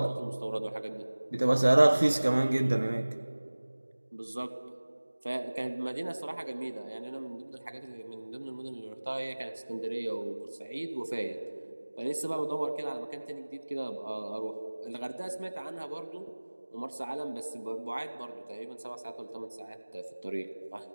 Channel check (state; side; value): inverted; both; correlation -1.00